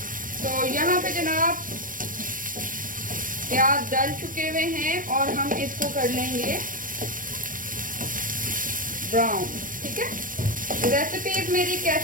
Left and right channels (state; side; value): late; left; 0.40 ms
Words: तो यहाँ पे जनाब प्याज डाल चुके हुए हैं और हम इसको कर लेंगे ब्राउन। ठीक है, रेसिपीज मेरी